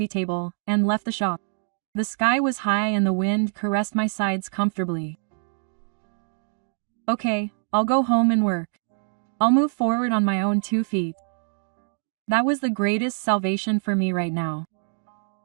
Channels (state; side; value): silent; left; digital silence